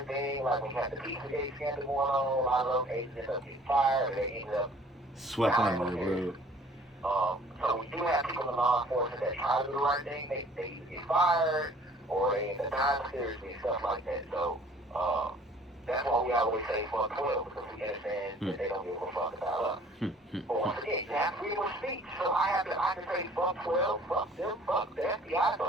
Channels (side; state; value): both; normal; correlation 0.53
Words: thing, like when you have the Pizzagate scandal going on, a lot of those agents end up getting fired, or they end up Swept under the rug. So we do have people in law enforcement that try to do the right thing. They either get fired or they end up dying seriously and stuff like that. So that's why we always say fuck 12, because we understand that they don't give a fuck about us. But once again, you have freedom of speech. So I can say fuck 12, fuck them, fuck the FBI,